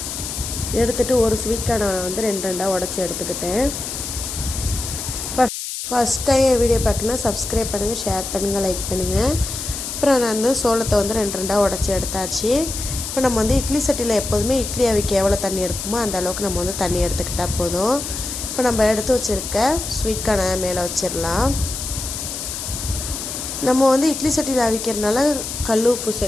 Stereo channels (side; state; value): left; noise; hiss, 6 dB below the sound